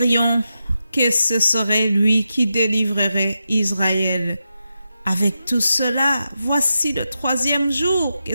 que ce serait lui qui délivrerait Israël. Avec tout cela, voici le 3e jour que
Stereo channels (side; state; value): both; inverted; correlation -0.88